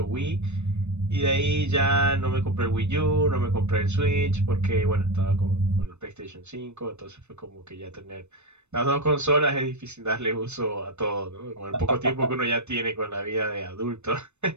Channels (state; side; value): late; left; 0.82 ms